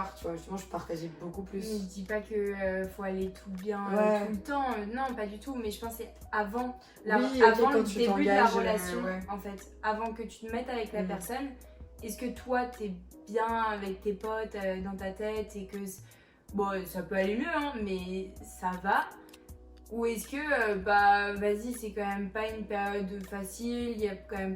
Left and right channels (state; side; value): identical; both; correlation 1.00